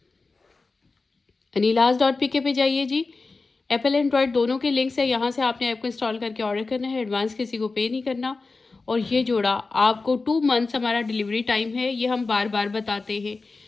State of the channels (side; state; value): right; quieter; 3.9 dB